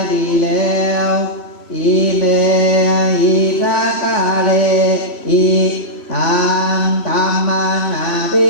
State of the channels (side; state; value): right; late; 3.1 ms